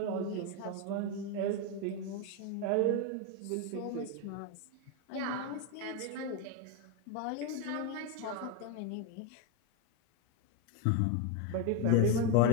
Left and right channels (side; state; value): both; different; correlation 0.02